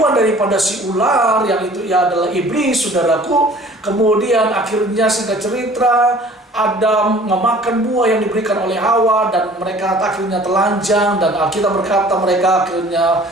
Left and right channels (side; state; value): both; normal; correlation 0.50